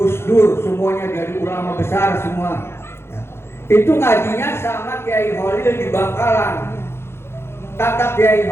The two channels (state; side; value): late; right; 0.12 ms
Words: Dur, semuanya jadi ulama besar semua ya. Itu ngajinya sama Kiai Holil di Bangkalan. Kata Kiai